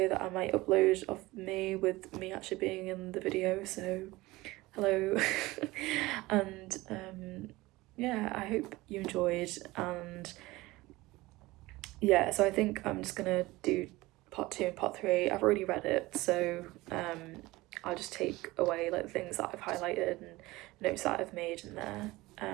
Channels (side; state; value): left; quieter; 20.0 dB